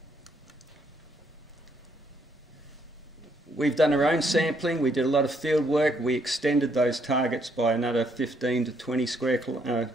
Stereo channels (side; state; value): both; normal; correlation 0.72